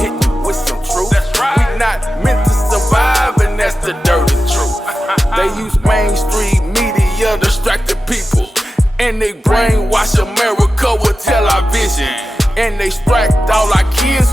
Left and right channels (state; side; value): normal; both; correlation 0.93